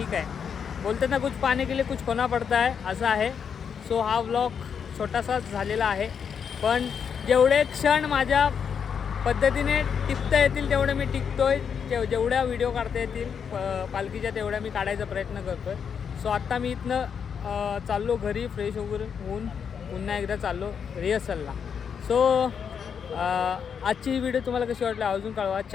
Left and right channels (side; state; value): right; quieter; 7.1 dB